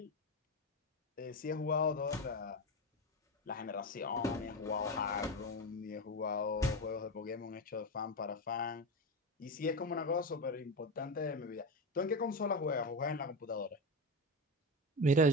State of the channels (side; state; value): both; normal; correlation 0.18